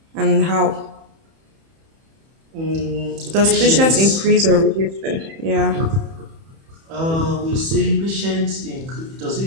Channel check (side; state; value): left; late; 31 ms